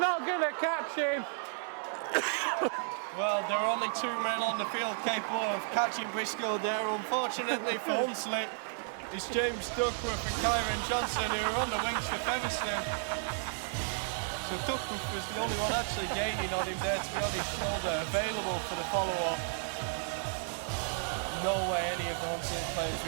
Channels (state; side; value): silent; left; digital silence